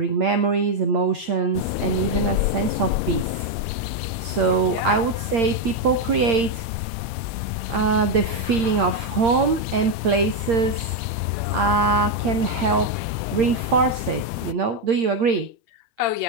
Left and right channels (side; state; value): left; late; 8.7 ms